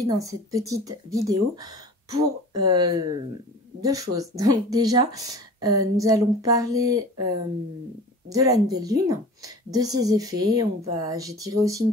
dans cette petite vidéo pour deux choses. Donc déjà, nous allons parler de la nouvelle lune, de ses effets. J'ai tiré aussi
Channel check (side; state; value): both; normal; correlation 0.40